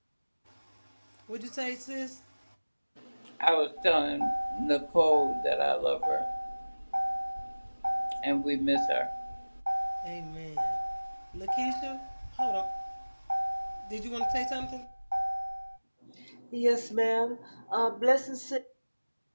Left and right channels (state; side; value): inverted; both; correlation -1.00